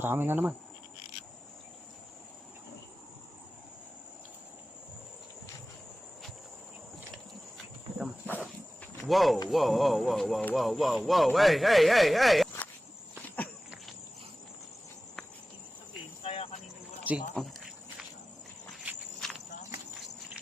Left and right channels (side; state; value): both; normal; correlation 0.96